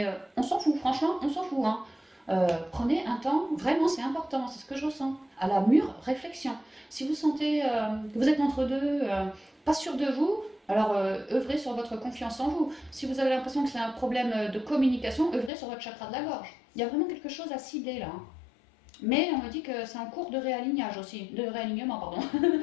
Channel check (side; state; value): right; drops out; at 15.5 s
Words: on s'en fout, franchement, on s'en fout. Hein. Prenez un temps, vraiment, c'est important, c'est ce que je ressens, à la mûre réflexion. Si vous sentez que vous êtes entre deux, pas sûr de vous, alors œuvrez sur votre confiance en vous. Si vous avez l'impression que c'est un problème de communication, œuvrez sur votre chakra de la gorge. Il y a vraiment quelque chose à cibler là. Hein. Mais on me dit que c'est en cours de réalignage aussi, de réalignement, pardon.